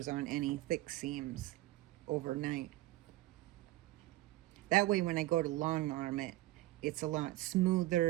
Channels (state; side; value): quieter; left; 17.3 dB